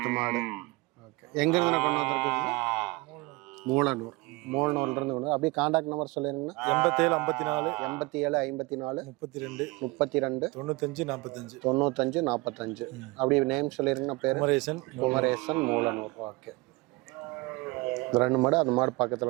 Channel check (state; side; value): quieter; left; 24.5 dB